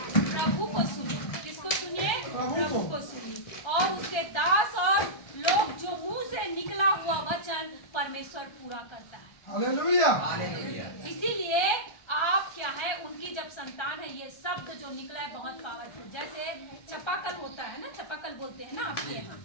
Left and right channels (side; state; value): right; late; 1.3 ms